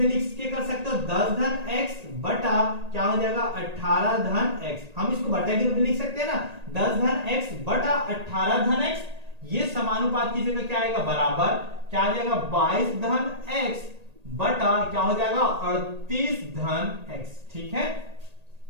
लिख के कर सकते हो, 10 धन x बटा क्या हो जाएगा 18 धन x, हम इसको बटे के रूप में लिख सकते हैं ना, 10 धन x बटा 18 धन x, ये समानुपात की जगह क्या आएगा बराबर क्या आ जाएगा 22 धन x बटा क्या हो जाएगा 38 धन x, ठीक है।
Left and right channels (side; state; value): left; late; 1.8 ms